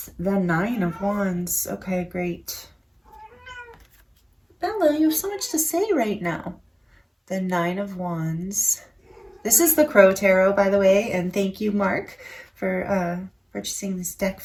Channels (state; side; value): identical; both; correlation 1.00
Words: The 9 of Wands. Okay, great. Bella, you have so much to say right now. The 9 of Wands. This is the Crow Tarot, by the way, and thank you, Mark, for purchasing this deck